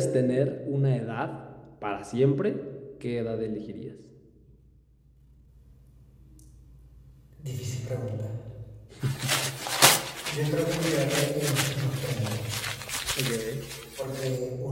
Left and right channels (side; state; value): both; identical; correlation 1.00